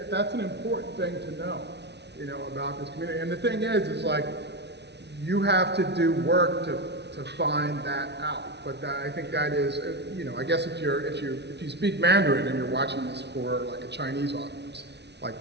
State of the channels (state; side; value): late; left; 0.50 ms